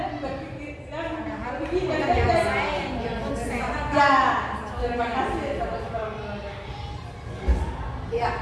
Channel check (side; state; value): both; identical; correlation 1.00